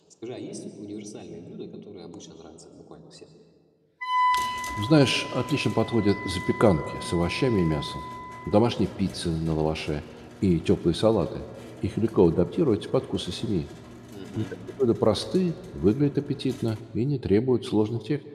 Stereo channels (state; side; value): identical; both; correlation 1.00